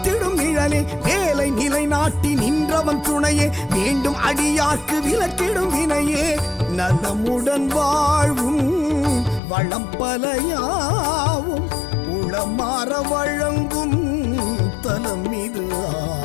நிழலே, வேலை நிலை நாட்டி நின்றவன் துணையே, வேண்டும் அடியார்க்கு விலக்கிடும் வினையே, நலமுடன் வாழ்வும் வளம் பலையாவும் உளமாற வழங்கும் தலம் இது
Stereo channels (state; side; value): drops out; right; at 9.4 s